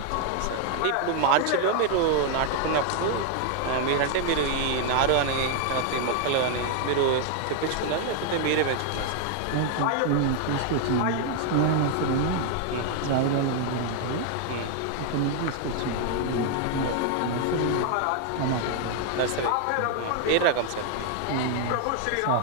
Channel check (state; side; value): different; both; correlation 0.00